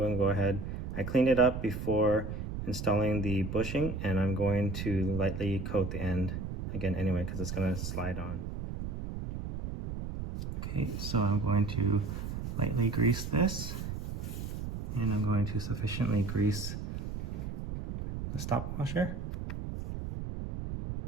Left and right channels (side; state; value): right; noise; rumble, 5 dB below the sound